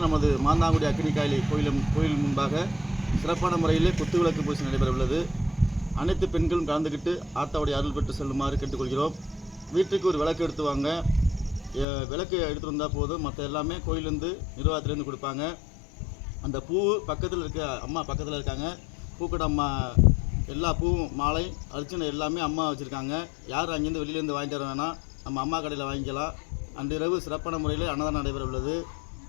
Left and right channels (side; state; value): right; drops out; at 11.9 s